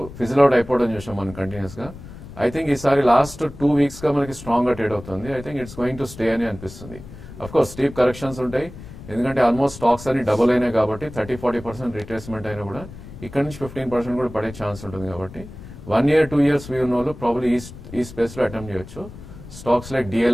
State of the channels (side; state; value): left; noise; rumble, 15 dB below the sound